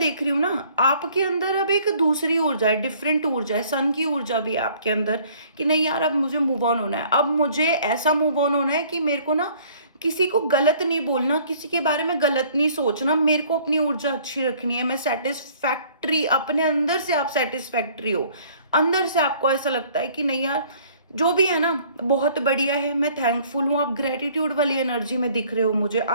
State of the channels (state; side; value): inverted; both; correlation -0.56